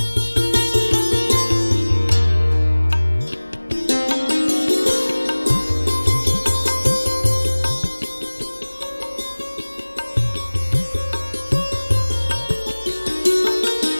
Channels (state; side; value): inverted; both; correlation -1.00